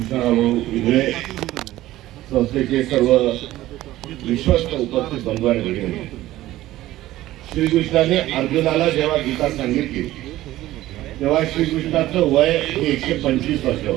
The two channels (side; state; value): left; quieter; 15.5 dB